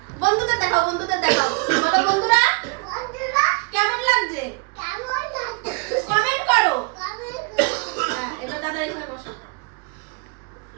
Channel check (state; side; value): quieter; left; 31.4 dB